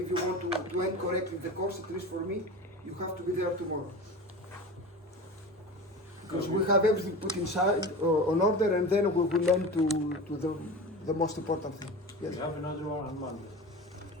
you want to end correctly the course, at least for me, you have to be there tomorrow. Because we have everything put inside on order, and then we will end to the most important thing. Yes. We have another one on Monday.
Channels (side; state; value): both; normal; correlation 0.31